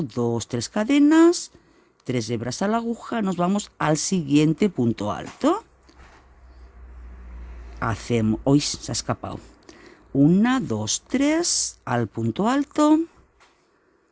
2, 3 cadenas, 3 hebras a la aguja, nos vamos al siguiente punto alto. Hacemos, hoy se ha escapado. 1, 2, 3 al punto alto.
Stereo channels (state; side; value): identical; both; correlation 1.00